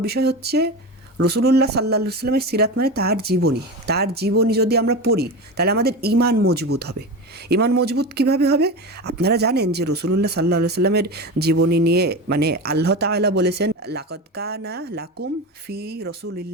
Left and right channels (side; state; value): both; normal; correlation 0.24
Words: বিষয় হচ্ছে রসুলুল্লাহ সাল্লাল্লাহু আলাইহি সাল্লামের সিরাত তার জীবনী যদি আমরা পড়ি তাহলে আমাদের ঈমান মজবুত হবে। ঈমান মজবুত কীভাবে হবে? আপনারা জানেন যে রসুলুল্লাহ সাল্লাল্লাহু আলাইহি সাল্লামের জীবনী নিয়ে আল্লাহ তাআলা বলেছেন, লাকাদ কানা লাকুম ফি